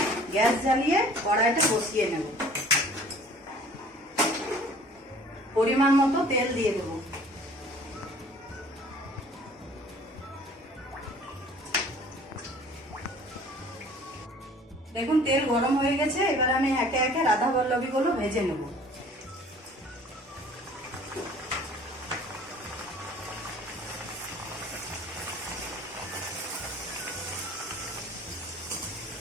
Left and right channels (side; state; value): both; normal; correlation 0.50